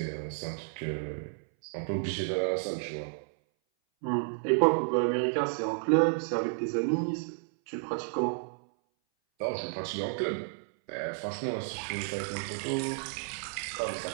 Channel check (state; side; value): silent; left; 57 dB below the other